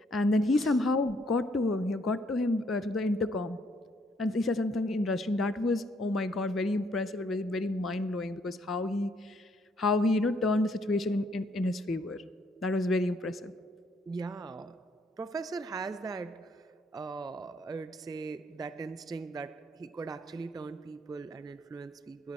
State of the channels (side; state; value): both; normal; correlation 0.69